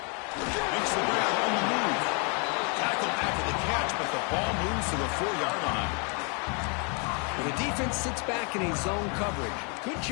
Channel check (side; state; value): right; quieter; 35.8 dB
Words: Makes the grab on the move. Tackled after the catch, but the ball moves to the 4-yard line. And the defense sits back in a zone coverage. Good